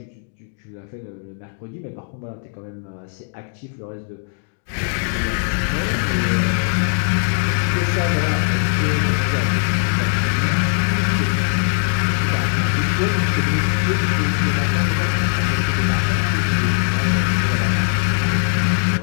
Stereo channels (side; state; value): right; silent; 61 dB below the other